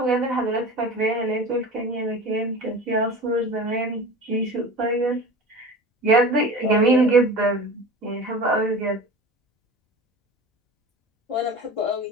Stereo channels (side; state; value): both; normal; correlation 0.35